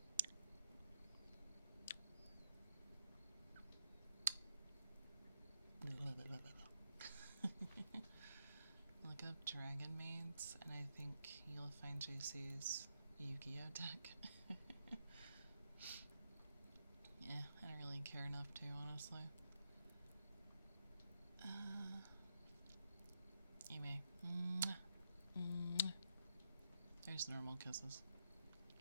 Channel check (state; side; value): inverted; both; correlation -0.80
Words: Look up Dragon Maids, and I think you'll find JC's Yu-Gi-Oh deck. Yeah, I don't really care enough to, honestly. Anyway. There's normal kisses.